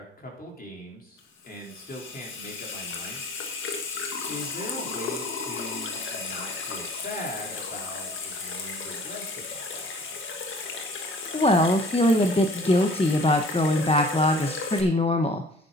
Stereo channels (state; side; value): normal; both; correlation 0.50